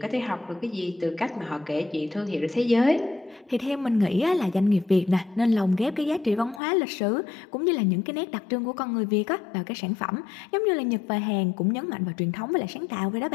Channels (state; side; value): drops out; right; at 6.6 s